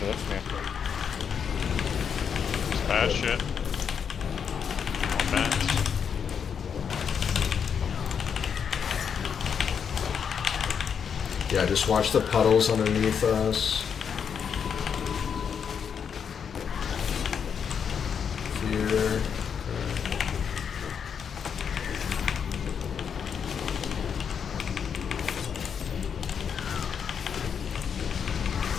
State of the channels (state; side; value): quieter; right; 7.2 dB